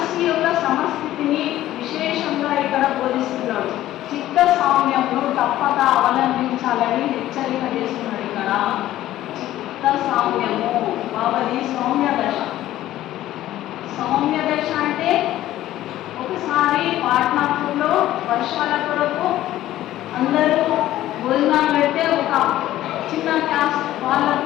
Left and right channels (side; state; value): right; quieter; 14.1 dB